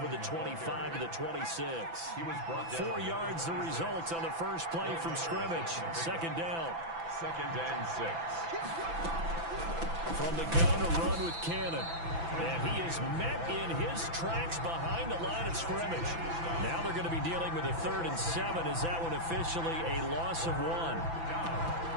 the 25 to the 26. He was brought down. 4 yards the result on the first play from scrimmage. 2nd down. 2nd and 6. From the gun, a run with Cannon. And he is met in his tracks behind the line of scrimmage. Now they're going to be dealing with a 3rd and 7. Is that one officially a loss of 1?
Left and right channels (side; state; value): left; late; 6.0 ms